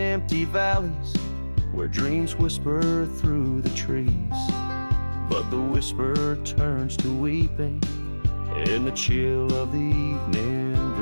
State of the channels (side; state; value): both; inverted; correlation -1.00